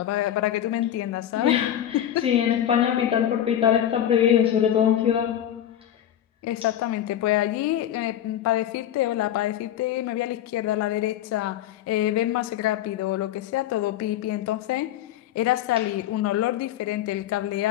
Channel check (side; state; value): right; quieter; 11.2 dB